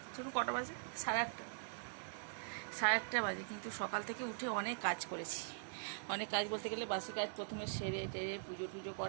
চলো কটা বাজে, 8:30। 8:30 বাজে, কিন্তু সকাল থেকে উঠে অনেক কাজ করেছি। অনেক কাজ বলতে গেলে বাসি কাজ প্রথমে সেরে টেরে পুজো টুজো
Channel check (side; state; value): left; silent; digital silence